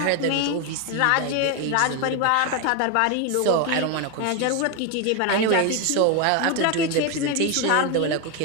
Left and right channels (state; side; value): different; both; correlation 0.02